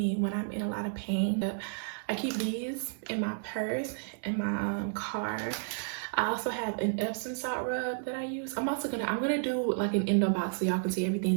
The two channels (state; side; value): silent; left; digital silence